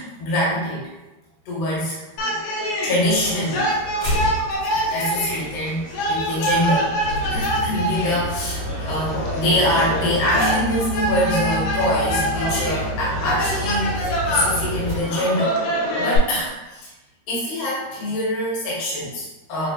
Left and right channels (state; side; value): late; right; 13 ms